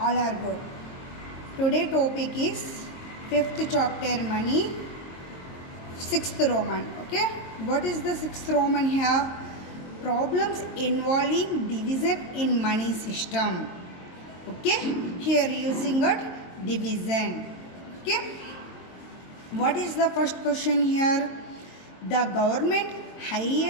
are good. Today topic is 5th chapter money, 6th Roman. Okay. What is the 6th Roman here? Problems involving division in money system. Okay. Here using it division. Okay. What is the first question here? The government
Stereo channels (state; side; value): late; right; 22 ms